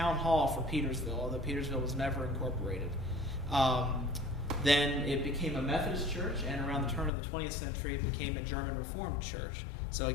hall for Petersville, although Petersville was never incorporated. Then it became a Methodist church, and around the turn of the 20th century, it became a German Reformed church. So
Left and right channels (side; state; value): right; drops out; at 7.1 s